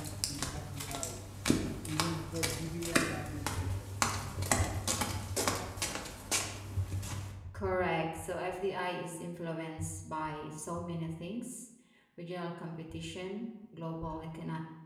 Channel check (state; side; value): identical; both; correlation 1.00